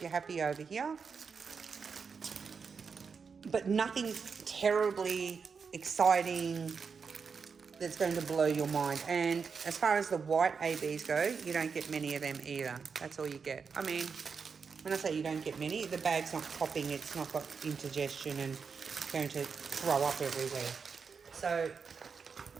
you happy over here. But nothing terribly exciting that's going to blow your mind. And as far as the white ABs go, you don't get many of them either. That's all you get. I mean, when I say you don't get many, the bag's not popping. It's not got indigestion and going to throw up everywhere. So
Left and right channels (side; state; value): left; quieter; 5.7 dB